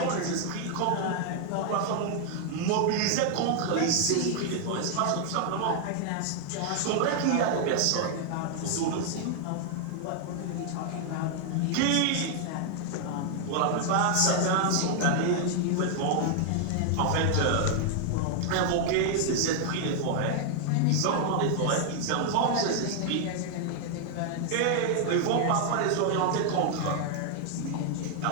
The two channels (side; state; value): both; different; correlation 0.00